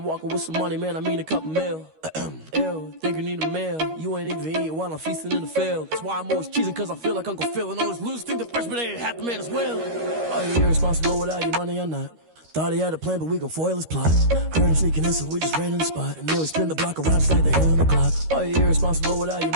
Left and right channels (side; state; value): left; late; 13 ms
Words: walking with some money, man, I mean a couple mil. Ew, think you need a meal. You ain't even eating while I'm feasting in the field. That's why I'm always cheesing, cause I feel like Uncle Phil. And all those losers think the freshman ain't half the man as well. Are you irresponsible without your money or not? Thought he had a plan, but we gon' foil his plot. Heard him sneaking in, so we just ran in the spot. And then we spin the block around just like the hands on the clock. Are you irresponsible without your